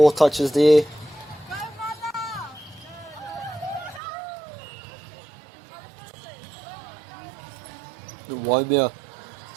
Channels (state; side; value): drops out; left; at 4.0 s